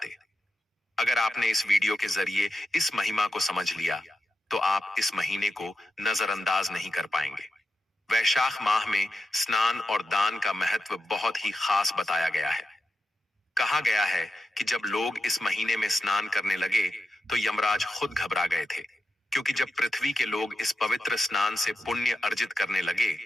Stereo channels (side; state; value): both; normal; correlation 0.89